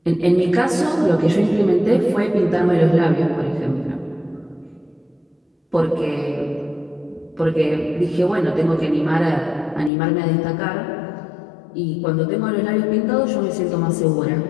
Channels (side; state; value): right; drops out; at 9.9 s